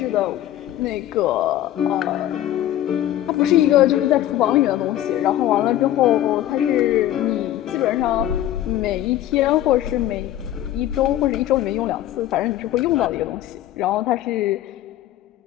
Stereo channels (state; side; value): quieter; right; 12.9 dB